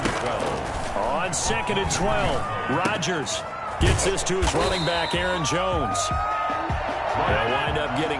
On 2nd and 12, Rodgers gets this to his running back, Aaron Jones. They'll wind up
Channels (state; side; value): identical; both; correlation 1.00